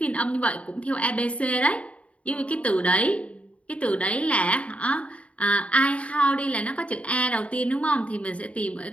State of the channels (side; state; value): right; late; 0.064 ms